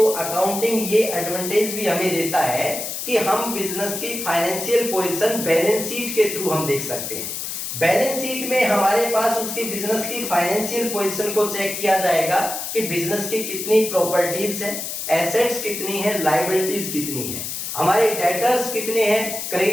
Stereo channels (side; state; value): left; noise; hiss, 5 dB below the sound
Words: अकाउंटिंग ये एडवांटेज भी हमें देता है कि हम बिजनेस की फाइनेंशियल पोजीशन बैलेंस शीट के थ्रू हम देख सकते हैं। बैलेंस शीट में हमारे पास उसकी बिजनेस की फाइनेंशियल पोजीशन को चेक किया जाएगा कि बिजनेस की कितनी प्रॉपर्टीज है, एसेट्स कितनी है, लायबिलिटीज कितनी है, हमारे डेटर्स कितने हैं,